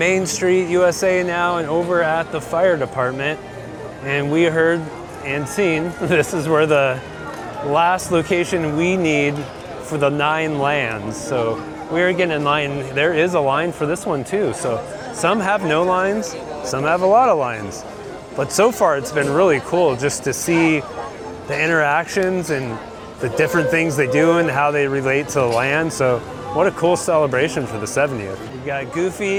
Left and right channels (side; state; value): both; identical; correlation 1.00